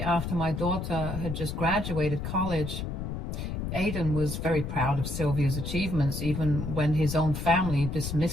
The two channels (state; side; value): noise; left; rumble, 4 dB below the sound